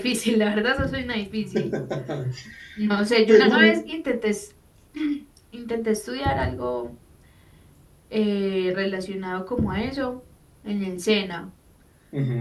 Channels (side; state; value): both; identical; correlation 1.00